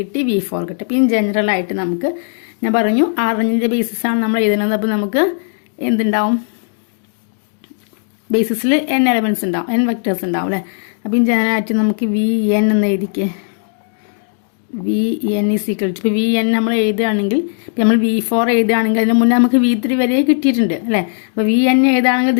V4 കിട്ടി. അപ്പം ജനറൽ ആയിട്ട് നമുക്ക് ഞാൻ പറഞ്ഞു ആറിൻ്റെ ബേസിസാണ് നമ്മൾ എഴുതുന്നത്. അപ്പോൾ നമുക്ക് എന്തുണ്ടാവും, ബേസിസിൽ n എലമെന്റ്സ് ഉണ്ടാവും, n വെക്ടേഴ്സ് ഉണ്ടാവും അല്ലേ. അപ്പം ജനറൽ ആയിട്ട് നമുക്ക് Vn എന്ന് എഴുതിക്കേ. Vn ഈസ് ഈക്വൽ ടു ഇപ്പോൾ Vn നമ്മൾ എഴുതുകയാണെങ്കിൽ നമ്മൾ V4 എഴുതുകയാണെങ്കിൽ അതിന് മുന്നേ നമുക്ക് V3 വരെ കിട്ടിയിട്ടുണ്ട് അല്ലേ. അപ്പോൾ Vn എഴുതുകയാണെങ്കിൽ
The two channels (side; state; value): right; silent; digital silence